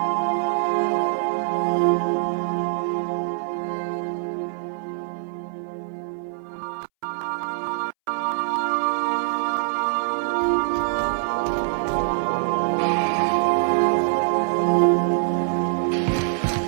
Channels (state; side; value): silent; left; 63 dB below the other